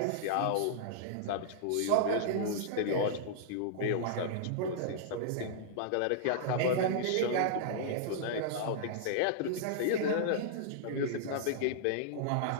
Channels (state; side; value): different; both; correlation -0.02